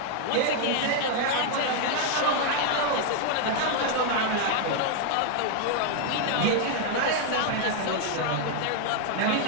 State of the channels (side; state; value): both; different; correlation 0.00